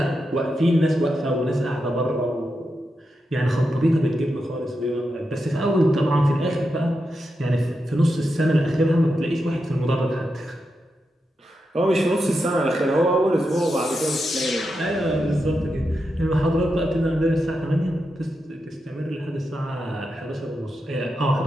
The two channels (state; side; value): normal; both; correlation 0.87